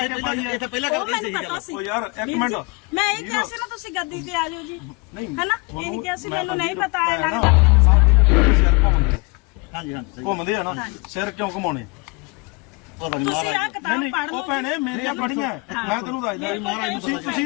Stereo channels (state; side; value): quieter; right; 28.8 dB